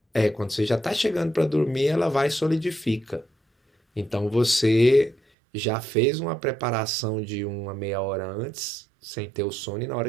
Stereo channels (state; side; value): drops out; left; at 5.2 s